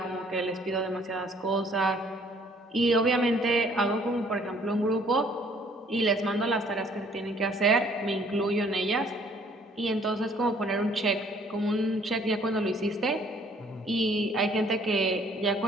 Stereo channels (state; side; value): normal; both; correlation 0.60